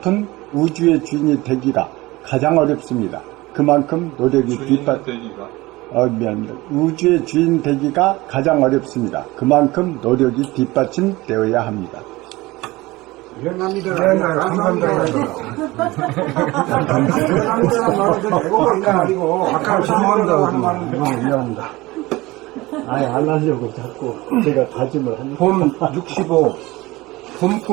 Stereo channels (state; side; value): quieter; left; 20.3 dB